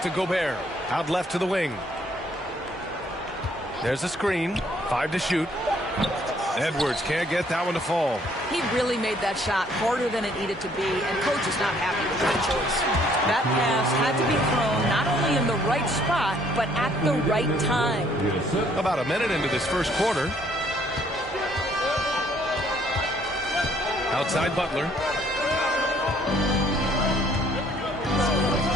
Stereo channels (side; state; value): both; normal; correlation 0.64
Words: Gobert. Out left to the wing. There's a screen. 5 to shoot. Edwards can't get that one to fall. He really made that shot harder than it needed to be, and coach is not happy with that choice. That pass had to be thrown not only in the right spot, but at the right time. About a minute into this first quarter. Outside Butler.